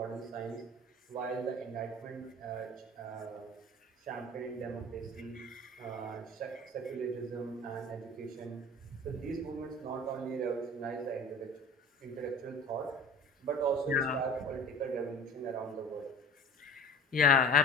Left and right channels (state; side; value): normal; both; correlation 0.40